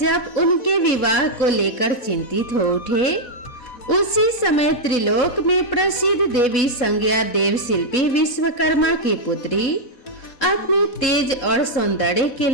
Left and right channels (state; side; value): late; right; 4.1 ms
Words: उनके विवाह को लेकर चिंतित हो उठे। उसी समय त्रिलोक में प्रसिद्ध देवी संज्ञा देव शिल्पी विश्वकर्मा की पुत्री अपने तेज और सौंदर्य के